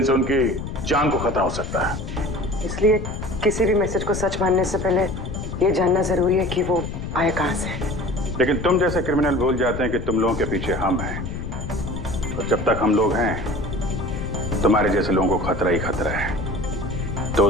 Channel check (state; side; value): noise; left; rumble, 6 dB below the sound